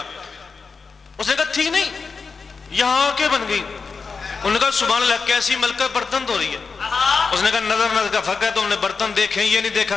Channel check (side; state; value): right; quieter; 4.9 dB